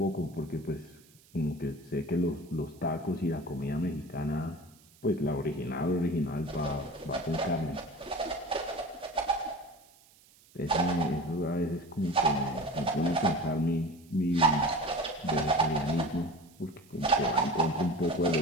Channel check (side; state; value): right; noise; hiss, 28 dB below the sound